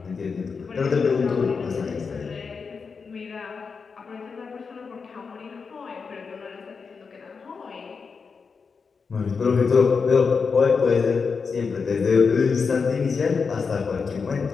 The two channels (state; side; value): quieter; right; 5.3 dB